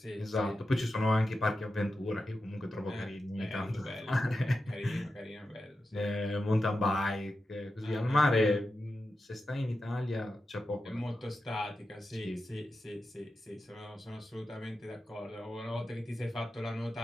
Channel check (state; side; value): normal; both; correlation 0.90